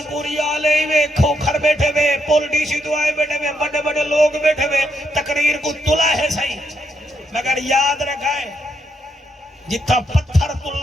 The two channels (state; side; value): normal; both; correlation 0.78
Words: پوری آلے وے کھوکھر بیٹھے وے پول ڈی سی تو آئے بیٹھے وے بڑے بڑے لوگ بیٹھے وے تقریر کو تلا ہے صحیح مگر یاد رکھائے جتنا پتھر تل